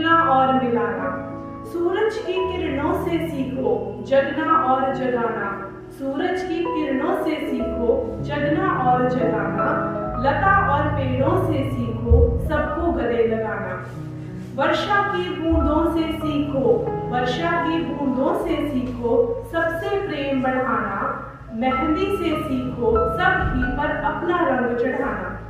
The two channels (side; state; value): both; identical; correlation 1.00